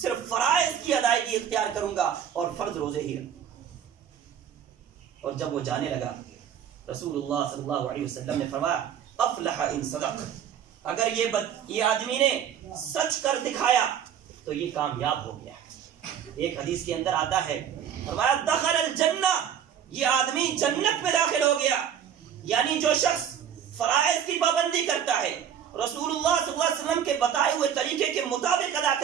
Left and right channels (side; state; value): left; quieter; 8.9 dB